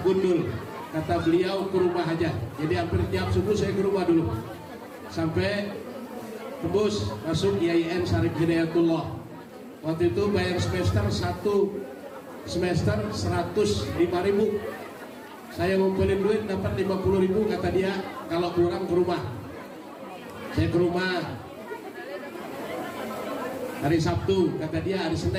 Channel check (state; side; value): identical; both; correlation 1.00